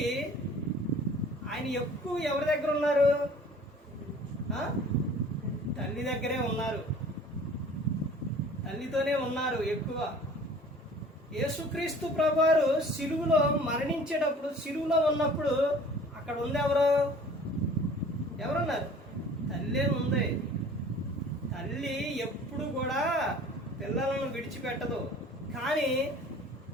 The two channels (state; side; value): normal; both; correlation 0.47